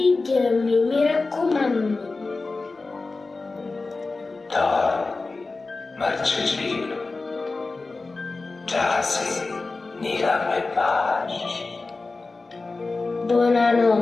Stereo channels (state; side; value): quieter; right; 3.7 dB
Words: mi raccomando. Dormi, Marcellino. Giasi, nella me pace.